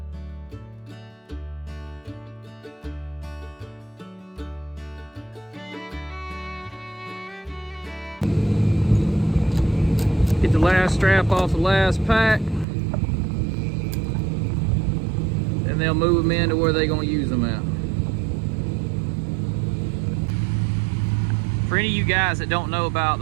Get the last strap off the last pack. And they'll move them into where they're going to use them at. For any of you guys that don't know about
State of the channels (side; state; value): left; drops out; at 12.7 s